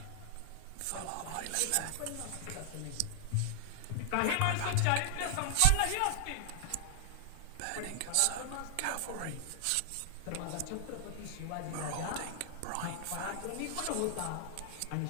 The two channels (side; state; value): both; different; correlation 0.00